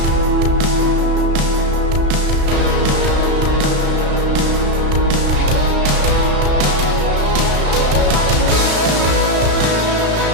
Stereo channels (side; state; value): left; late; 34 ms